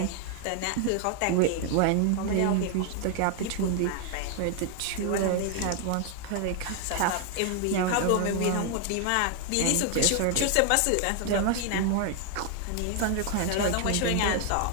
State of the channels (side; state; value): both; different; correlation 0.00